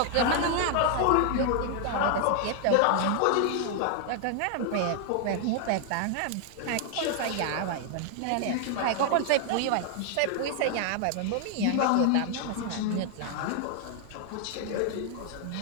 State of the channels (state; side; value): different; both; correlation 0.00